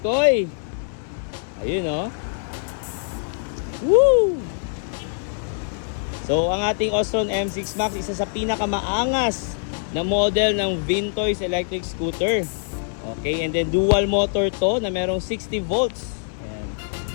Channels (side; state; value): right; silent; digital silence